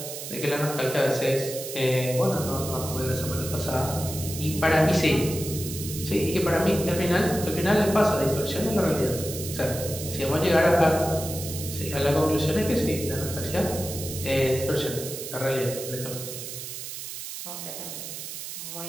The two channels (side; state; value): right; noise; hiss, 8 dB below the sound